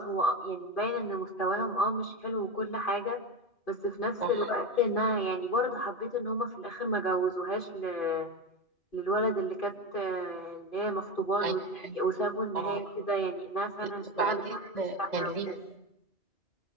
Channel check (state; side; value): late; right; 2.5 ms